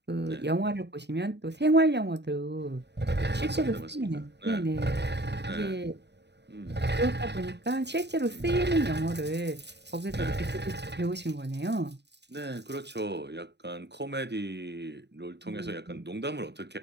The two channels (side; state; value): left; late; 0.50 ms